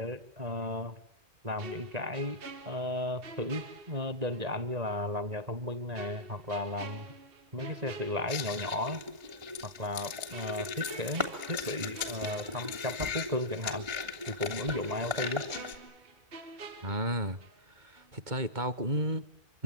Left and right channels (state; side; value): late; left; 1.5 ms